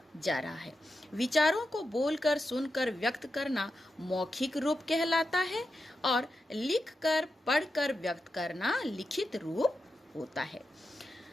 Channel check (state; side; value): normal; both; correlation 0.88